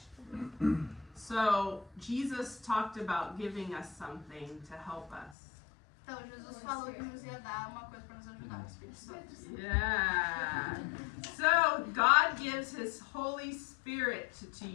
So, Jesus talked about giving us something to help us. Então, Jesus falou que nos ia dar uma coisa para nos ajudar, o Espírito Santo. Yeah. So God gives His Holy Spirit to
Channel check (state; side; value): drops out; right; at 5.4 s